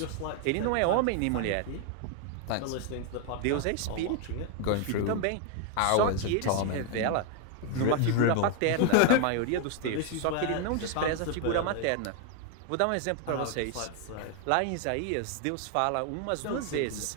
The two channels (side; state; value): both; different; correlation 0.00